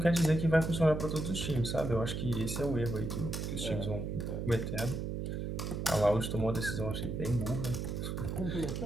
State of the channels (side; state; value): right; noise; hum, 3 dB below the sound